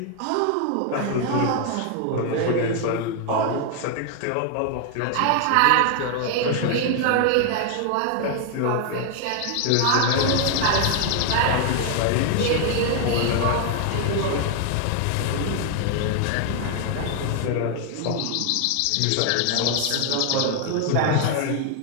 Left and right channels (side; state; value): both; different; correlation 0.00